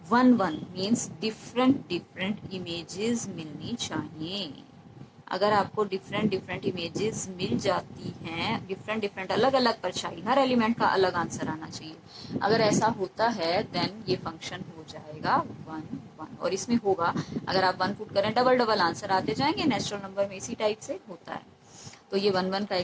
1 1 मीन्स डिफरेंट इमेजेस मिलनी चाहिए। अगर आपको डिफरेंट इमेजेस मिल जाती हैं, डिफरेंट अलग अलग परछाई, हर एलिमेंट का अलग आंसर आना चाहिए। अगर ऐसा होता है देन ये फंक्शन हो जाएगा 1 1। और इसमें होगा, अगर आप 1 पुट करें डबल आंसर आते जाएंगे, नेचुरल नंबर में इसी टाइप से होता है। तो ये 1 1 का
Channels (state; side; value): identical; both; correlation 1.00